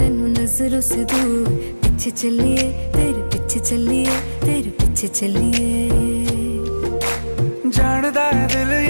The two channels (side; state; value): both; inverted; correlation -1.00